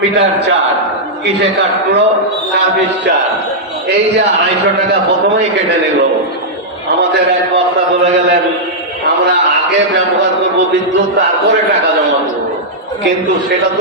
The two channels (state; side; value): normal; both; correlation -0.08